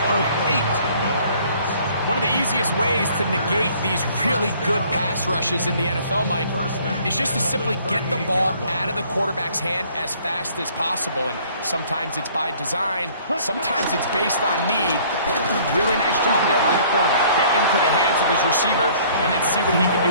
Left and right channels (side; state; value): both; inverted; correlation -0.57